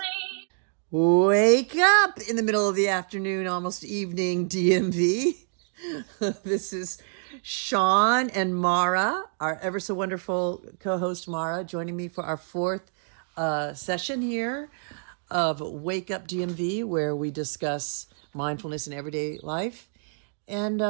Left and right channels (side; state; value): left; silent; digital silence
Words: Wake up in the middle of the afternoon, almost evening, DMV. This is Sean and Mara, our ever so wonderful co-host Mara, joining me for our fourth session here of Wake Up DMV, where we discuss mindfulness in everyday life. And